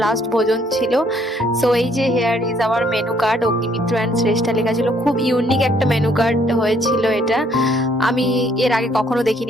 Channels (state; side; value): normal; both; correlation 0.66